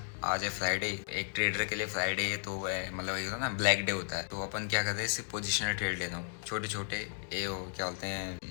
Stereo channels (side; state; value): right; silent; digital silence